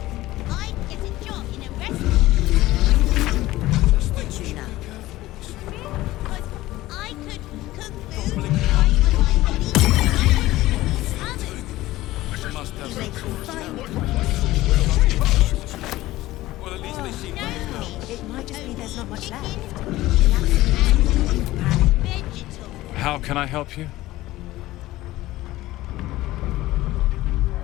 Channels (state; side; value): quieter; right; 17.0 dB